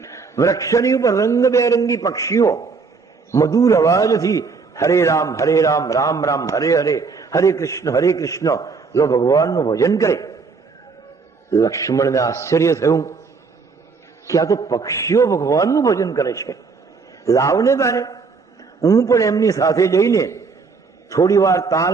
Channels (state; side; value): quieter; left; 4.8 dB